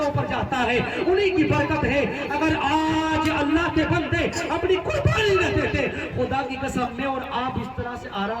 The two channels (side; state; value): both; identical; correlation 1.00